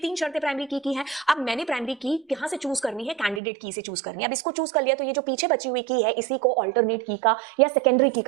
शर्तें प्राइमरी की है। अब मैंने प्राइमरी की कहां से चूज करनी है, कैंडिडेट की से चूज करनी है। अब इसको चूज कर लिया तो ये जो पीछे बची हुई की है इसी को अल्टरनेट की का या सेकेंडरी की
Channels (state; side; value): drops out; left; at 3.4 s